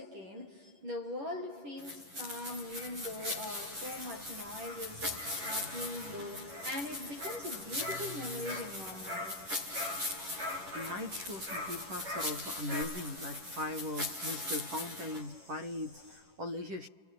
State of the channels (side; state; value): left; late; 11 ms